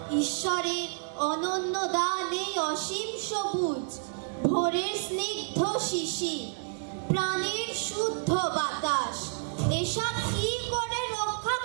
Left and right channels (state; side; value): silent; left; digital silence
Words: ঈশ্বরের অনন্য দান এই অসীম সবুজ, ভোরের স্নিগ্ধ শিশির, প্রাণের শুদ্ধ বাতাস, এসব কি করে রক্ষা